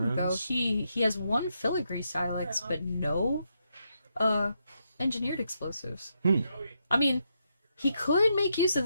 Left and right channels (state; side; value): inverted; both; correlation -0.81